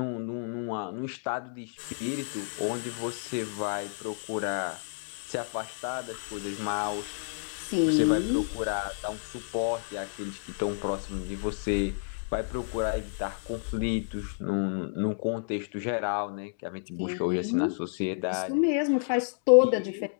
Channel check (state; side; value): silent; right; digital silence